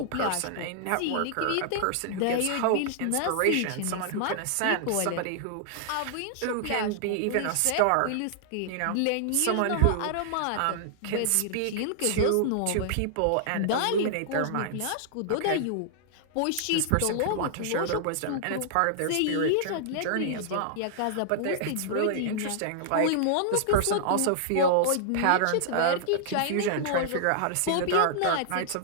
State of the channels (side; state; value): both; different; correlation -0.01